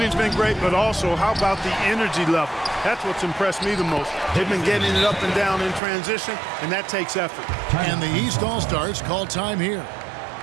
been great, but also how about the energy level? That's what's impressed me the most. They've been getting it up and down in transition, and that takes effort. And the East All-Stars call time here.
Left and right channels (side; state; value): left; drops out; at 5.8 s